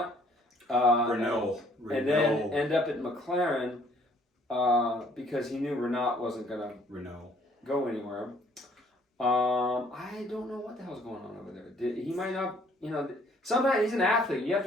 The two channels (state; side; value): normal; both; correlation 0.61